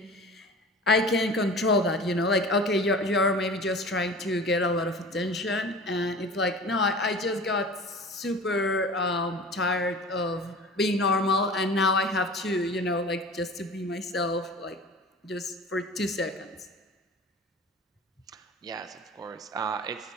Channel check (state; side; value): normal; both; correlation 0.39